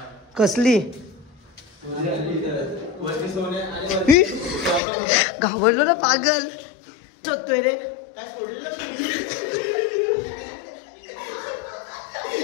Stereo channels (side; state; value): right; drops out; at 4.8 s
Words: कसली घाबरलो ना पागल, शोधतोय रे,